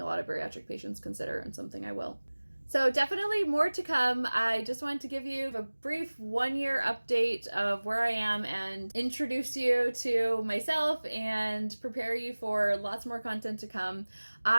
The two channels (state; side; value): inverted; both; correlation -1.00